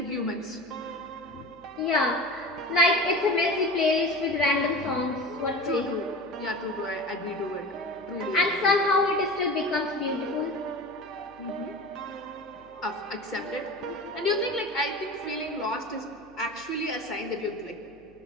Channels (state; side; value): noise; left; hum, 29 dB below the sound